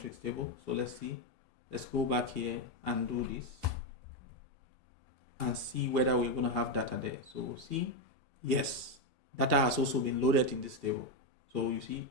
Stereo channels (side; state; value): both; normal; correlation 0.06